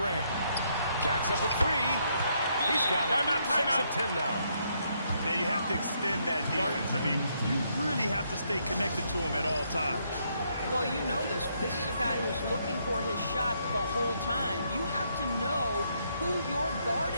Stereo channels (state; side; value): inverted; both; correlation -0.74